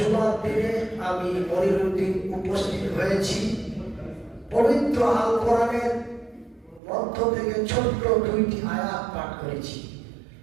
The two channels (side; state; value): left; drops out; at 6.8 s